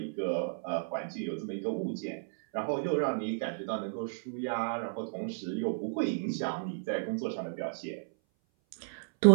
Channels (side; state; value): left; silent; 56 dB below the other